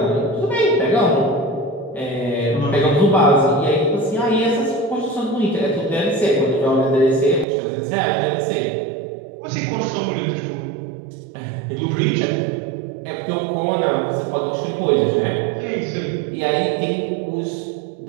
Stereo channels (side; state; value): left; drops out; at 7.5 s